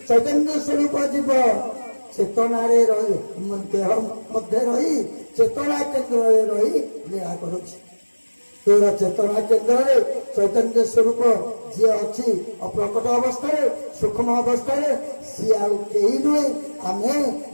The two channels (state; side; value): inverted; both; correlation -1.00